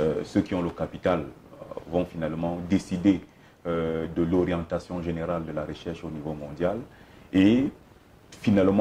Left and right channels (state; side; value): identical; both; correlation 1.00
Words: Ceux qui ont le capital vont finalement décider de l'orientation générale de la recherche au niveau mondial et